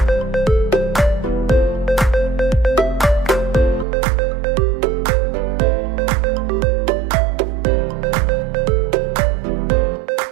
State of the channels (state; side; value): drops out; left; at 3.9 s